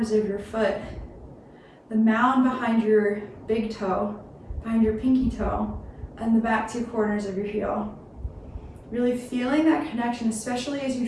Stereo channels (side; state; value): both; identical; correlation 1.00